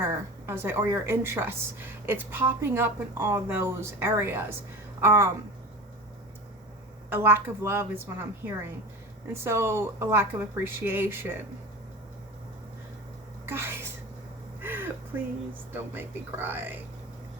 or your interests. It's popping up in all those areas. A lack of love is what I'm hearing. And so a lack of appreciation. Guys, please don't make me cry.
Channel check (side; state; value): both; normal; correlation 0.32